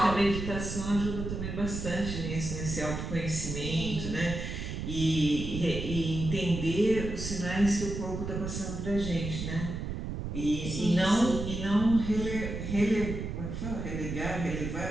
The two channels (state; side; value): noise; right; rumble, 5 dB below the sound